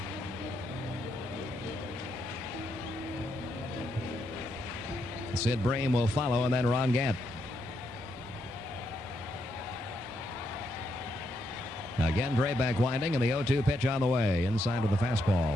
Sid Bream will follow, and then Ron Gant. Again, Drebek winding, and the 0-2 pitch on the way. Inside of the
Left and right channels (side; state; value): both; normal; correlation 0.79